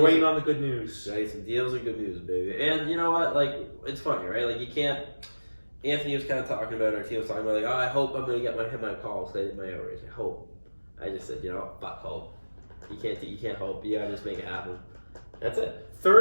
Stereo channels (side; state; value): both; inverted; correlation -1.00